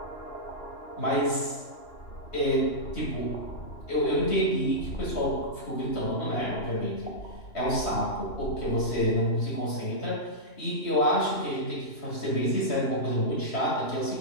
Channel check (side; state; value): right; late; 2.9 ms